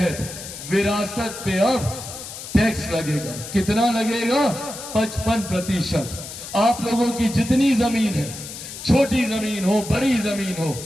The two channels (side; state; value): left; noise; hiss, 11 dB below the sound